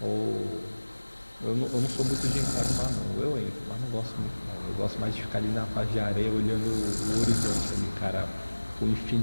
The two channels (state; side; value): inverted; both; correlation -1.00